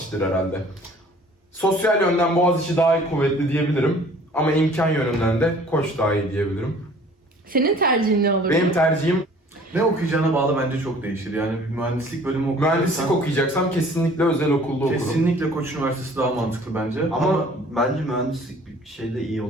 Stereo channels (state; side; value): normal; both; correlation 0.52